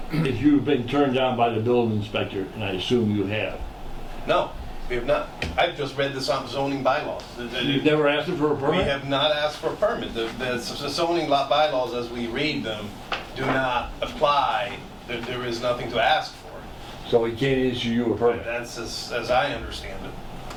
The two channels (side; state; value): both; identical; correlation 1.00